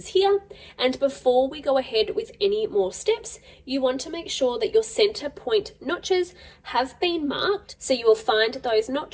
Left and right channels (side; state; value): both; identical; correlation 1.00